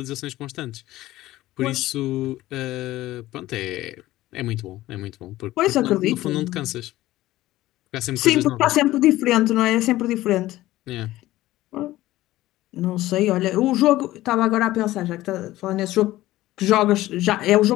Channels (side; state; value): right; quieter; 16.2 dB